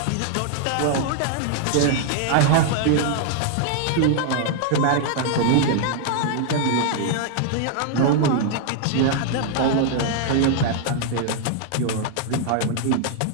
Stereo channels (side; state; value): both; different; correlation 0.00